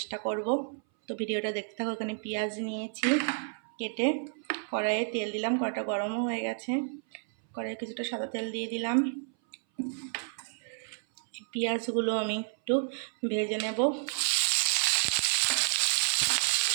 করব। তো ভিডিওটা দেখতে থাকো। এখানে পেঁয়াজ নিয়েছি কেটে, কড়াইয়ে তেল দিলাম, কড়াইটা গরমও হয়ে গেছে। কড়াইয়ে কিছুটা সাদা তেল দিয়ে দিলাম। পেঁয়াজগুলো আমি একটু ভেজে নেব।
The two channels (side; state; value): left; silent; 58 dB below the other